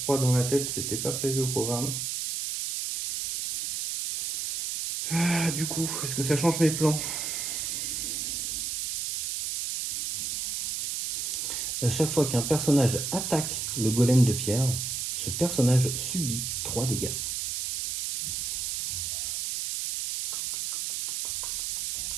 dans la tête, c'était pas prévu au programme. Ah, du coup, est-ce que ça change mes plans? À chaque fois qu'un personnage attaque le golem de pierre, ce personnage subit 3 dégâts.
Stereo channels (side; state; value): right; noise; hiss, 2 dB below the sound